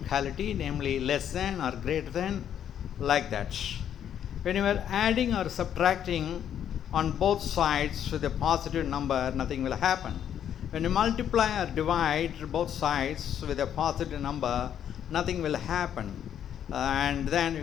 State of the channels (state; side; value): quieter; right; 9.6 dB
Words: namely less than or greater than, like that. When you are adding or subtracting on both sides with a positive number, nothing will happen. When you multiply or divide both sides with a positive number, nothing will happen. And then